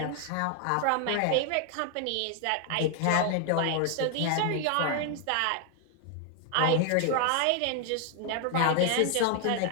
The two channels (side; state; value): both; different; correlation 0.00